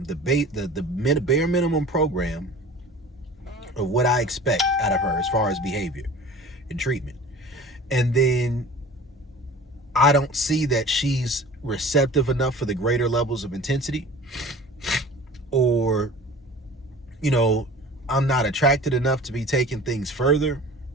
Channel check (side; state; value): both; normal; correlation 0.41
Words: the bare minimum program of what I expect out of her as far as behavior and treatment, and then I don't see that she's receptive enough for the greater levels of intensity, or, I'm not attracted enough to be taking things further,